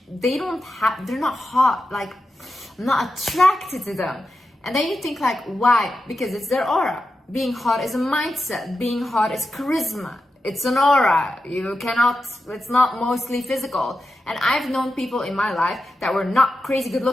They're not hot. Like, I'm not attracted to them. And then you think like, why? Because it's their aura. Being hot is a mindset. Being hot is charisma. It's an aura. It's not mostly physical. And I've known people in my life that were not crazy good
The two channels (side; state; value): both; normal; correlation 0.90